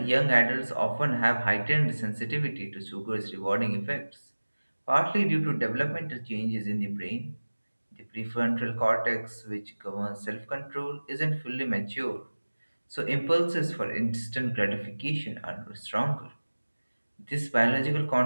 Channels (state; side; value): inverted; both; correlation -1.00